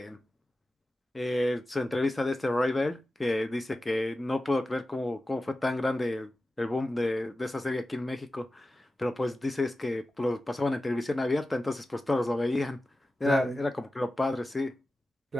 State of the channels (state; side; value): normal; both; correlation 0.94